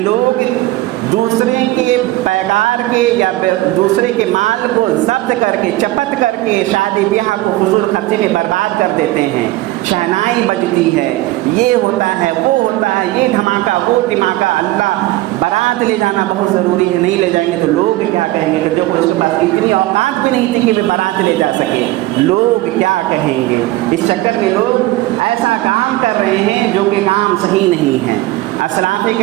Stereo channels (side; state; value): left; quieter; 17.6 dB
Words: दूसरे के पैगार के या दूसरे के माल को जब्त करके चपत करके शादी ब्याह को फजूल खर्ची में बर्बाद कर देते हैं। शहनाई बजती है, ये होता है, वो होता है, ये धमाका वो धमाका। अल्लाह बारात ले जाना बहुत ज़रूरी है, नहीं ले जाएंगे तो लोग क्या कहेंगे कि जो उसके पास इतनी औकात भी नहीं थी कि मैं बारात ले जा सके, लोग क्या कहेंगे। इस चक्कर में लोग ऐसा काम कर रहे हैं जो कि काम सही नहीं है। असलाफ़े